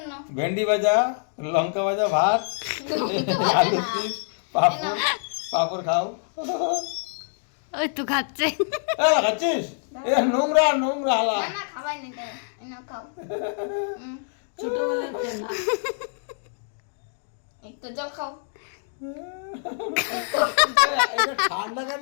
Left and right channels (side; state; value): right; silent; digital silence